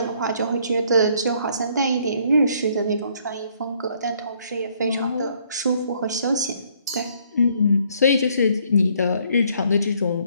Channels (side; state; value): both; inverted; correlation -0.66